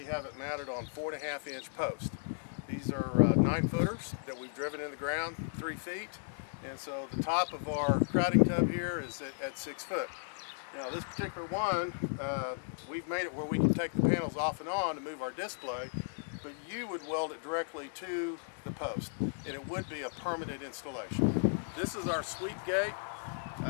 have it mounted on 4.5-inch posts. These are 9-footers that we've driven in the ground 3 feet, and so the top of our crowding tub here is at 6 foot. Now this particular one, we've made it where we can take the panels off and on to move our display, but you would weld it directly to the post, and it would be a permanent installation. This is our sweep gate.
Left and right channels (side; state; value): right; silent; 54 dB below the other